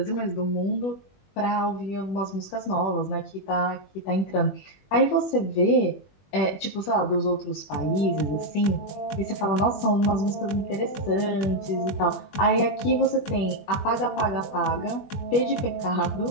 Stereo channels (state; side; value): late; right; 21 ms